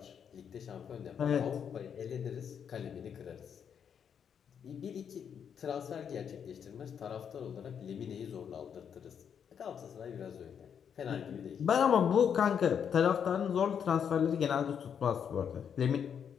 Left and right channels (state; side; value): quieter; right; 7.8 dB